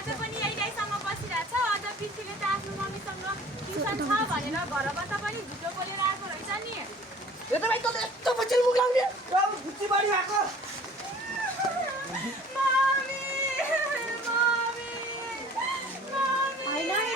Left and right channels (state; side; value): normal; both; correlation 0.49